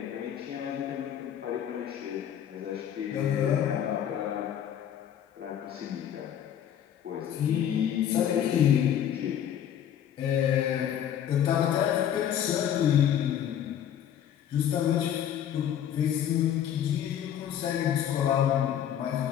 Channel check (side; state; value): right; quieter; 9.8 dB